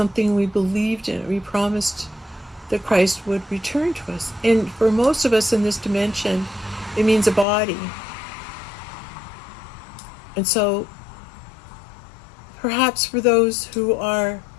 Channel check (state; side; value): drops out; right; at 7.5 s